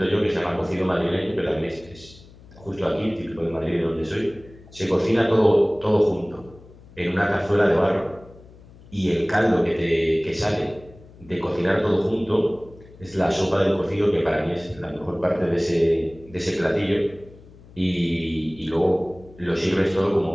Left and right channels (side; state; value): left; noise; hum, 22 dB below the sound